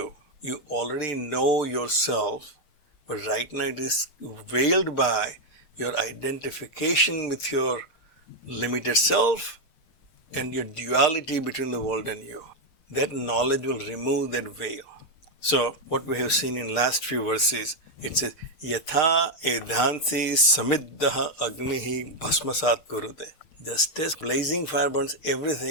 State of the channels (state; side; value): late; right; 6.6 ms